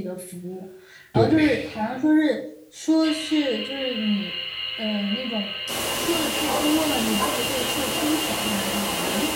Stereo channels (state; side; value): identical; both; correlation 1.00